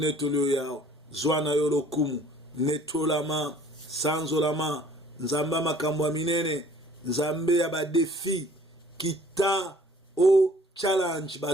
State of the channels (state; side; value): normal; both; correlation 0.54